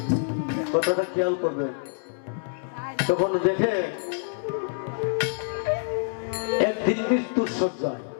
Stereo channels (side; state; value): right; silent; 59 dB below the other